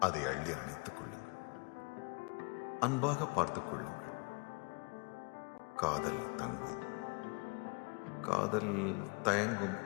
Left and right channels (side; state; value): right; quieter; 31.9 dB